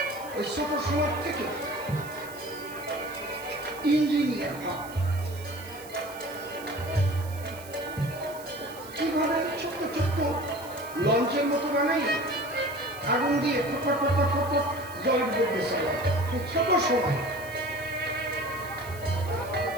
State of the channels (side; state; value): right; noise; hiss, 18 dB below the sound